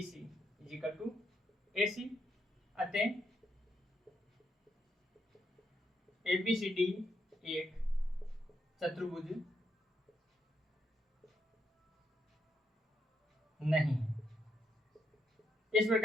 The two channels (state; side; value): normal; both; correlation 0.79